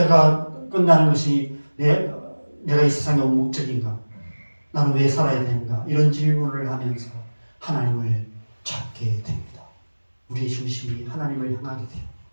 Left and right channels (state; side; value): inverted; both; correlation -1.00